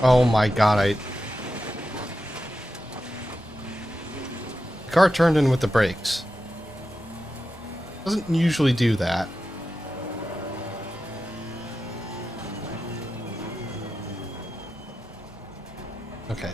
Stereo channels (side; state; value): both; normal; correlation 0.91